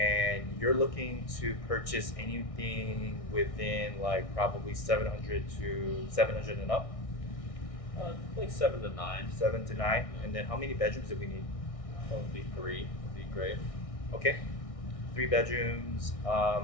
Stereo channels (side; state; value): right; late; 1.6 ms